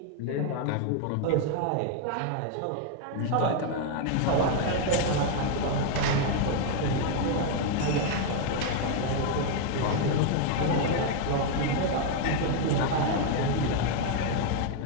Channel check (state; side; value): different; both; correlation 0.00